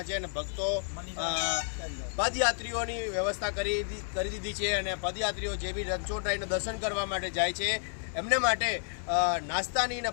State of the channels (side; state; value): right; silent; digital silence